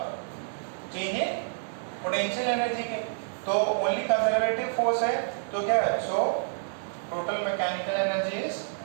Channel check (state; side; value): silent; left; digital silence